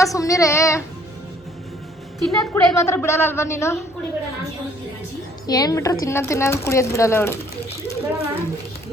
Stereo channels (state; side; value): normal; both; correlation 0.60